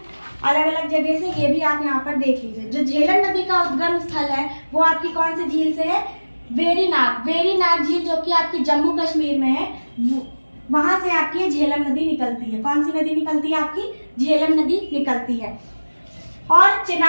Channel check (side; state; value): both; inverted; correlation -1.00